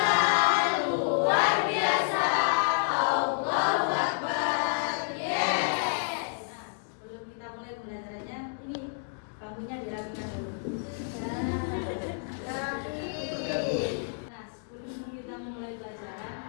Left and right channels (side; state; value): right; silent; digital silence